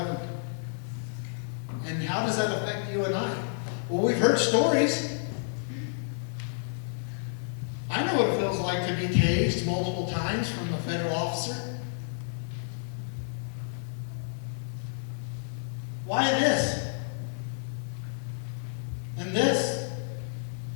And how does that affect you and I? Well, we've heard stories. I know what it feels like to be tased multiple times from a federal officer. Why this? And this?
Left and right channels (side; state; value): right; silent; digital silence